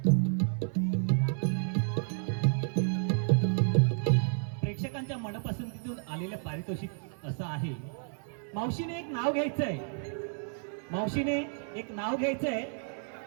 प्रेक्षकांच्या मनपसंतीतून आलेलं पारितोषिक असं आहे मावशीने एक नाव घ्यायचंय मावशीने एक नाव घ्यायचंय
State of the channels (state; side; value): silent; left; 57 dB below the other